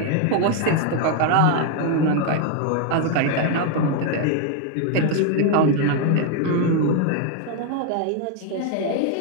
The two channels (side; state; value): both; different; correlation 0.01